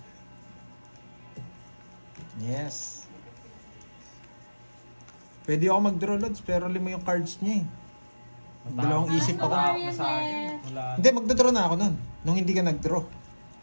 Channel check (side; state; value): both; inverted; correlation -1.00